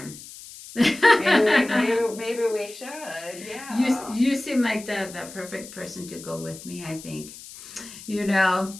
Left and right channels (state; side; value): noise; left; hiss, 16 dB below the sound